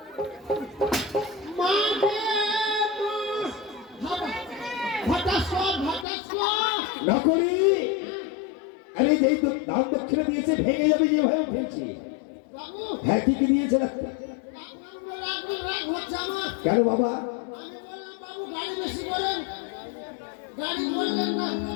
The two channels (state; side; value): drops out; right; at 6.1 s